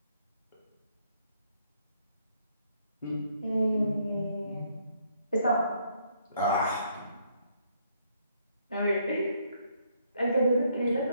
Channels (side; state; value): both; inverted; correlation -0.70